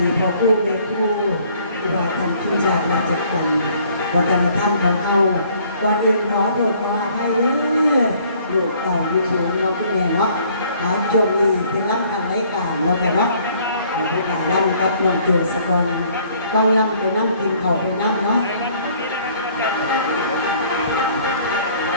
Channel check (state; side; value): inverted; both; correlation -0.59